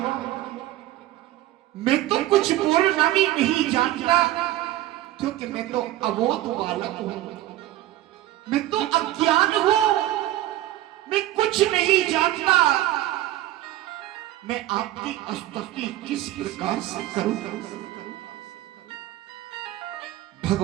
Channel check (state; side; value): quieter; left; 15.0 dB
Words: मैं तो कुछ बोलना भी नहीं जानता, क्योंकि मैं तो अबोध बालक हूं, मैं तो अज्ञान हूं, मैं कुछ नहीं जानता, मैं आपकी स्तुति किस प्रकार से करूं?